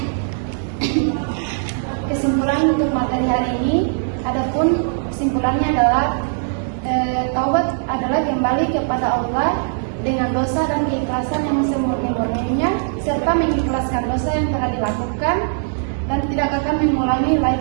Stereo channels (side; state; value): left; silent; digital silence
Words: Kesimpulan untuk materi hari ini, adapun kesimpulannya adalah taubat adalah kembali kepada Allah dengan dosa dan keikhlasan yang semurni-murninya, serta mengikhlaskan dosa yang telah dilakukan dan tidak akan mengulangi